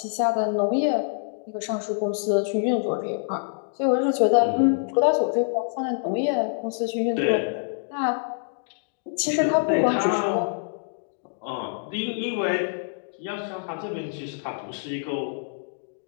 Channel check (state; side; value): silent; right; digital silence